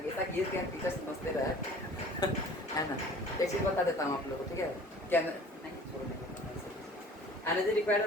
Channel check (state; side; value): normal; both; correlation 0.46